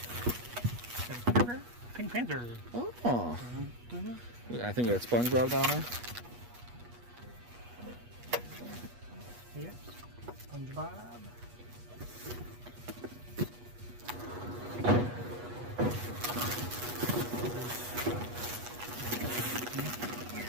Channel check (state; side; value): late; left; 8.3 ms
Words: Pink Panther. Oh. I think we got SpongeBob down there. Yep. SpongeBob.